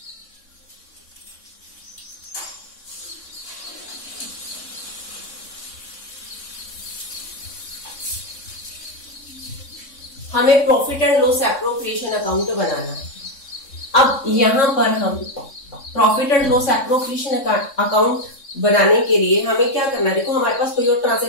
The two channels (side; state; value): right; late; 3.6 ms